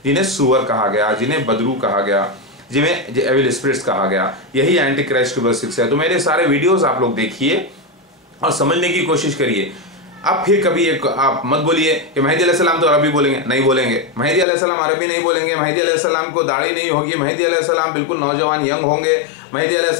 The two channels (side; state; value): right; drops out; at 14.5 s